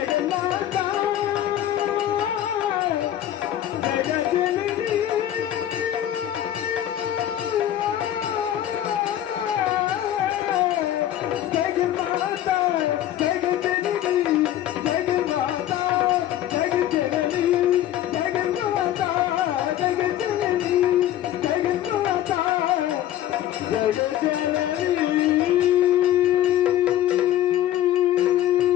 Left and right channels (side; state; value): right; quieter; 12.1 dB